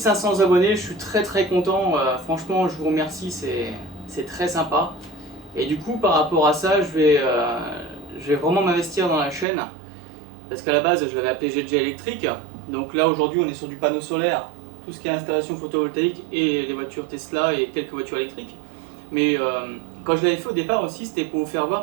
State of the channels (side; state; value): left; drops out; at 9.5 s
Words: abonnés, je suis très content, franchement je vous remercie, c'est très sympa. Et du coup par rapport à ça, je vais vraiment m'investir dans la chaîne, parce qu'à la base je l'avais appelé GG électrique, donc là aujourd'hui on est sur du panneau solaire, tout ce qui est installation photovoltaïque et les voitures Tesla et quelques voitures électriques. Mais quand je l'avais fait au départ aussi, c'était pour vous faire